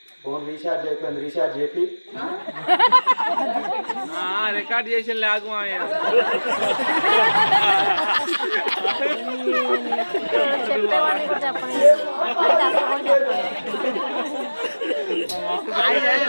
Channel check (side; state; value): both; inverted; correlation -1.00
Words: ఫోన్ రీఛార్జ్ అయిపోయింది. రీఛార్జ్ చెప్పి రికార్డ్ చేసి లేకు